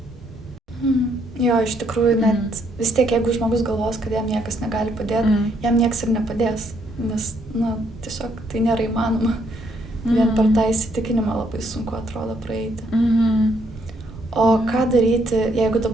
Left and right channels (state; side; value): normal; both; correlation 0.71